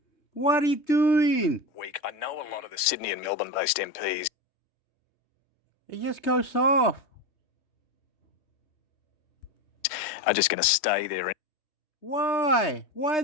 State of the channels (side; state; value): right; late; 3.3 ms